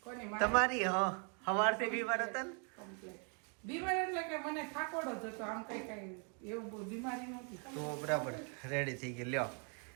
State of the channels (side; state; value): left; quieter; 39.1 dB